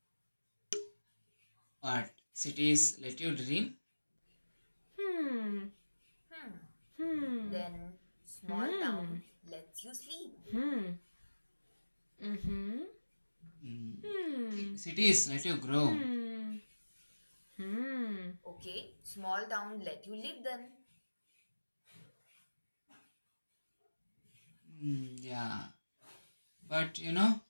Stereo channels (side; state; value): both; inverted; correlation -1.00